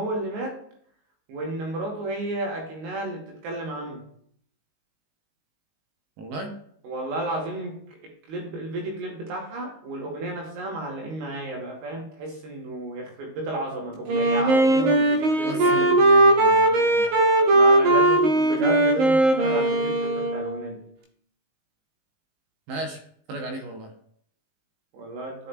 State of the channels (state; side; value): late; left; 19 ms